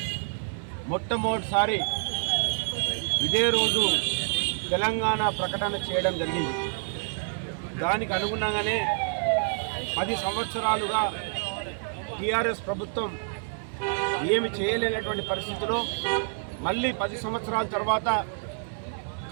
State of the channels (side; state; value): left; silent; 59 dB below the other